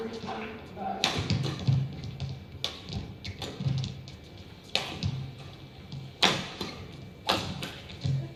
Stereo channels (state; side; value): identical; both; correlation 1.00